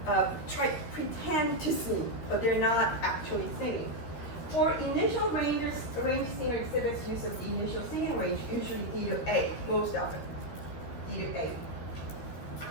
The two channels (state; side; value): late; right; 13 ms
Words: pretend to sing, but they're not actually singing. For initial range singer exhibits use of the initial singing range, usually D to A, most often, D to A.